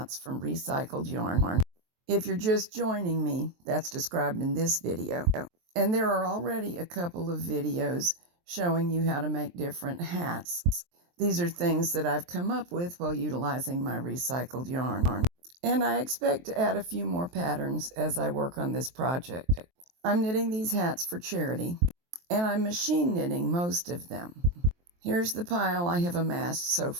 from recycled yarn. If you're just joining me, that's described in this video. And there are already a couple of videos showing you how to make different hats. These are things that I've come up with while utilizing my recycled yarn. And I expect to add a few more patterns as I work on this project. I'm knitting these hats for charity, and I'm machine knitting most of them. Here's the pile I have amassed so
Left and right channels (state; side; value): late; left; 23 ms